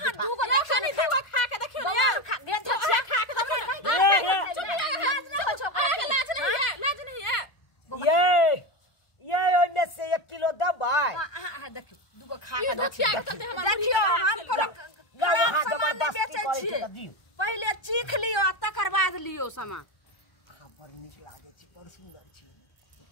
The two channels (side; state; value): right; late; 1.2 ms